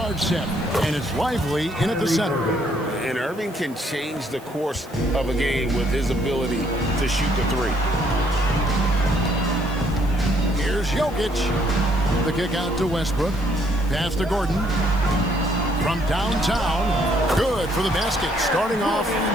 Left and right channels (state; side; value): noise; right; hiss, 24 dB below the sound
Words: set. And it's Lively in at the center. And Irving can change the course of a game with his ability to shoot the three. Here's Jokic. The kick out to Westbrook. Pass to Gordon. From downtown. Good for the basket. Starting off